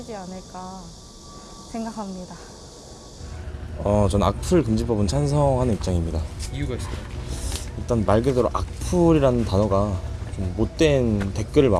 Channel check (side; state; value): both; identical; correlation 1.00